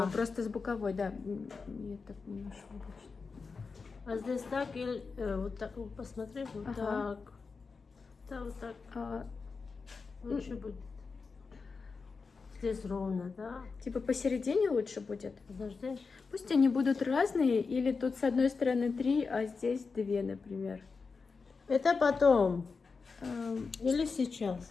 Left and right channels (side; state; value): right; quieter; 4.7 dB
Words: А. Просто с боковой, да. Я так не нашла точно. А здесь так или вот так, посмотри, вот Ага. так. Да, вот так. Лучше будет. Здесь ровно, да? Типа посередине лучше будет? Подожди. Пусть они будут разные, или тут с одной стороны 3, а здесь 2, например. Это потом. Эм, Или